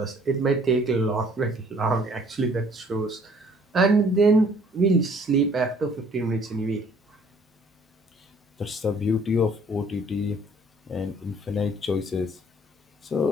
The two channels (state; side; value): normal; both; correlation 0.58